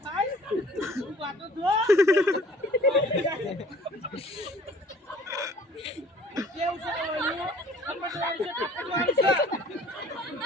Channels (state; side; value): normal; both; correlation 0.52